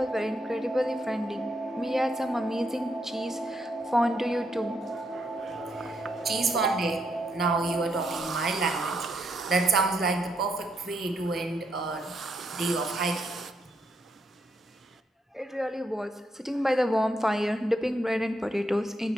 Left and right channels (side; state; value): both; normal; correlation 0.78